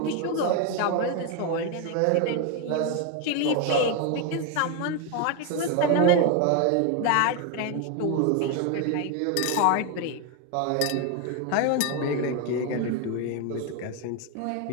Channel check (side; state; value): both; different; correlation 0.02